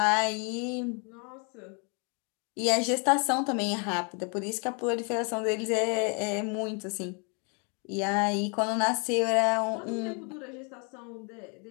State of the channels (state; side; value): quieter; right; 36.3 dB